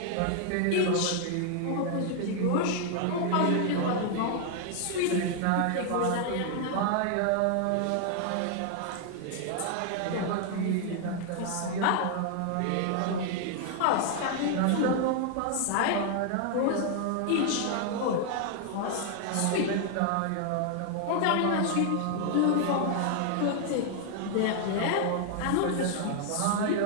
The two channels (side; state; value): both; different; correlation 0.00